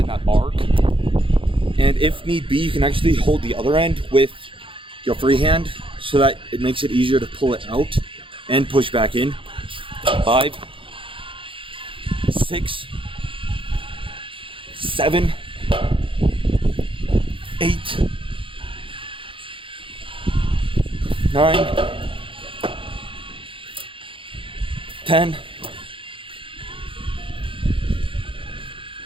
that arc. And if need be, you can actually hold the other end with your free hand so that it makes it easier to pull it out and push back in. 5, 6, 7, 8, 9, 10,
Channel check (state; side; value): late; left; 0.25 ms